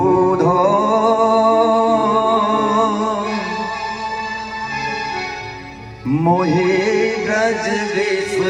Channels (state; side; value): identical; both; correlation 1.00